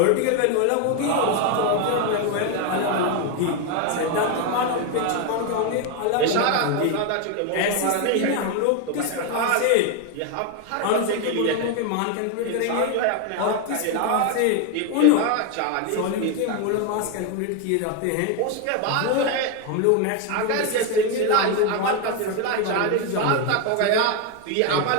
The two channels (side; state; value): both; different; correlation 0.01